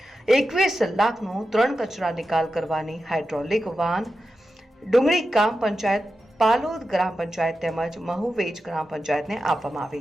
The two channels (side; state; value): both; normal; correlation 0.91